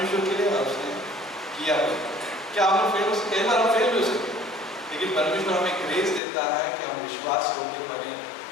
के लिए और उसने किया। क्या हम फेल हो सकते? कई बार हम फेल भी हो सकते, लेकिन परमेश्वर हमें ग्रेस देता है कि हम विश्वास होकर बने।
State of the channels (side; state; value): right; drops out; at 6.2 s